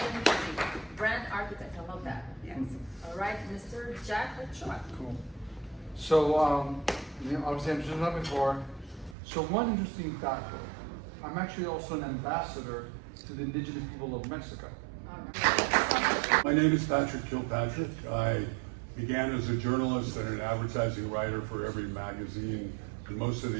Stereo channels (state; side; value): drops out; left; at 9.2 s